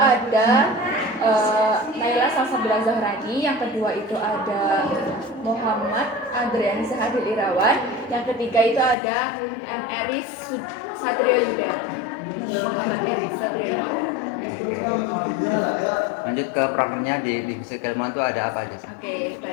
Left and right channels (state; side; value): drops out; right; at 9.0 s